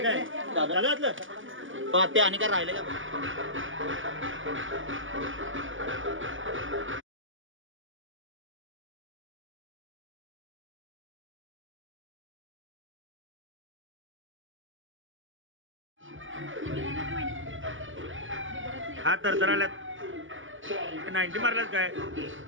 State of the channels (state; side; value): late; left; 0.57 ms